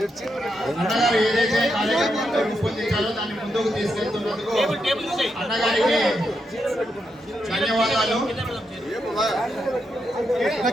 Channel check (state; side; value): normal; both; correlation 0.83